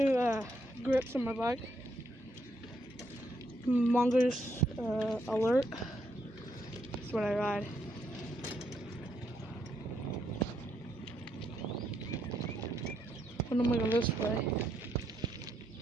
grips on my bike. Mongoose Alert. That's what I ride. And I'm gonna go this way.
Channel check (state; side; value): normal; both; correlation 0.76